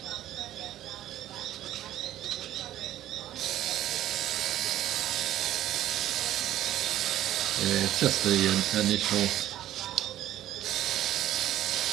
it's just the initial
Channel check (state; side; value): quieter; left; 13.0 dB